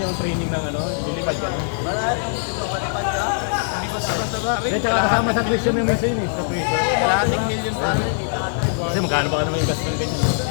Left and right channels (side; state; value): right; silent; 60 dB below the other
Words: training ng ano? Lilipad ka. Marami yung dito, malipad ka. hindi ko sabas-saba rin. Hindi, tsaka kasama sa tuition yung machine eh. Sa tuition. Kalahating million pa rin. Kasi magkano ba ka naman yung gas ng ganyan?